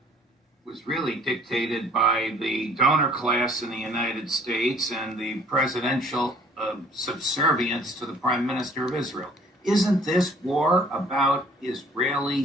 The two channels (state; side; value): normal; both; correlation 0.56